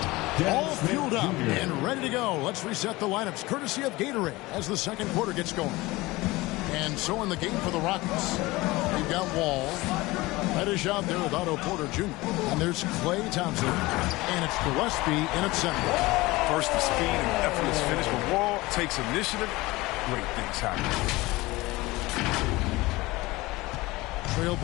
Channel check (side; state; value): right; quieter; 20.8 dB